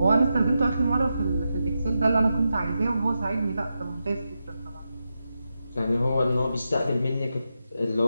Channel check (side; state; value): both; inverted; correlation -0.88